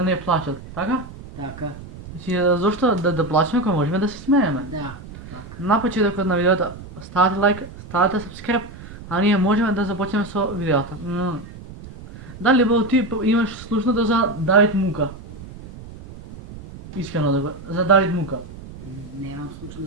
не плачат, така? Така, Значи, зошто да плачеме кога можеме да се смееме? да, така. На почетокот на видеото ставате лайк, ставате subscribe, а ние можеме да започнеме со видеото. Дали бо ти имаш слушнато за Давид Мука? Искрено да го, за Давид Мука. Немам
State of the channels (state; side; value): noise; right; rumble, 15 dB below the sound